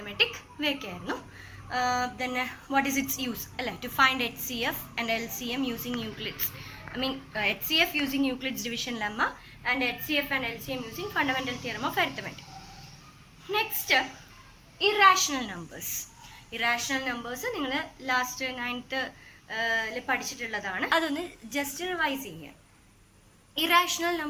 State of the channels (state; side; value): identical; both; correlation 1.00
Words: ഇവയൊക്കെ ആയിരുന്നു. Then what is its use? To find HCF and LCM using Euclid's. HCF using Euclid's division lemma and HCF and LCM using fundamental theorem of arithmetic. Next, irrational numbers. Irrational numbers നിങ്ങൾ ലാസ്റ്റ് 9th പഠിച്ചിട്ടുള്ളതാണ്. അതൊന്ന് ജസ്റ്റ് റിവൈസ് ചെയ്യാം. Irrational